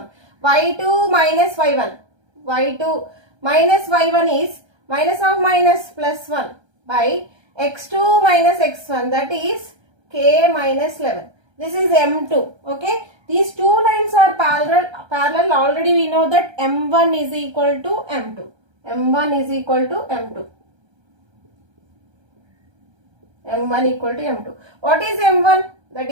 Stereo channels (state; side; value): late; left; 1.3 ms